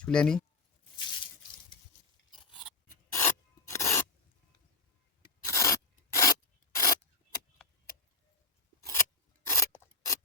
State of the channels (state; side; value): quieter; right; 3.3 dB